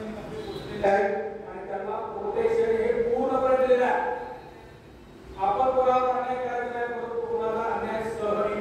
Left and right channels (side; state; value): both; identical; correlation 1.00